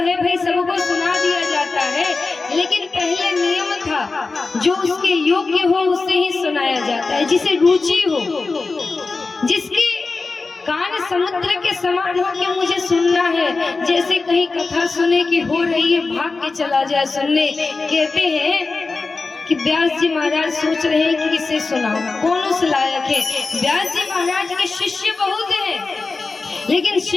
भाई सबको सुना दिया जाता है, लेकिन पहले नियम था जो उसके योग्य हो उसे ही सुनाया जाता है, जिसे रुचि हो, जिसके कान समुद्र के समान हो कि मुझे सुनना है, जैसे कहीं कथा सुने की हो रही है भाग के चला जाए सुनने। कहते हैं कि व्यास जी महाराज सोच रहे हैं कि किसे सुनाओ, कौन उस लायक है। व्यास जी महाराज के शिष्य बहुत हैं, लेकिन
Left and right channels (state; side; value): quieter; right; 3.9 dB